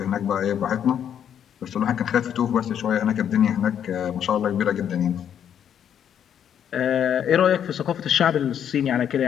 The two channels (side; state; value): right; quieter; 9.1 dB